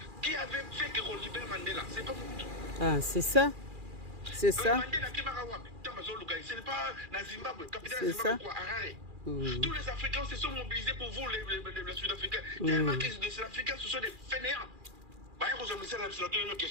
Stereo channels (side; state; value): left; late; 2.4 ms